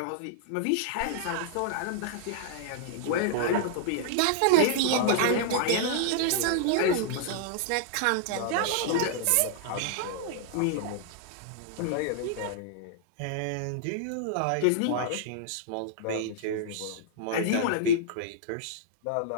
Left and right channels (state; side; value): different; both; correlation -0.01